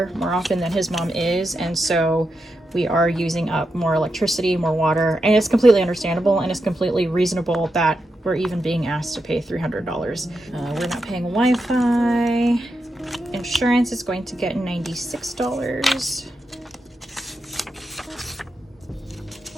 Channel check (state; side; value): normal; both; correlation 0.86